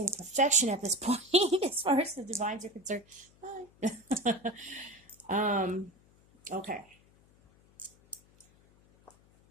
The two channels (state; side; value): noise; left; hum, 29 dB below the sound